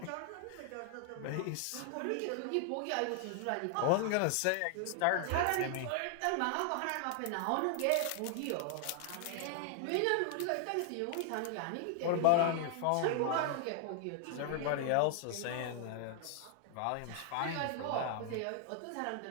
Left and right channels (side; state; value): both; different; correlation 0.00